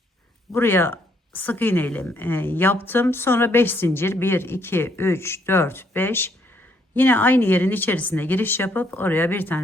Buraya sık iğne ile yaptım. Sonra 5 zincir, 1 2 3 4 5. Yine aynı yerin içerisine giriş yapıp oraya bir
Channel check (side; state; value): both; normal; correlation 0.70